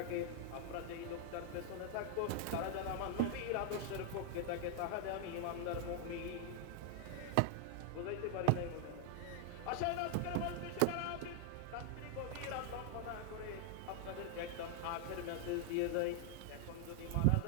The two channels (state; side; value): different; both; correlation 0.00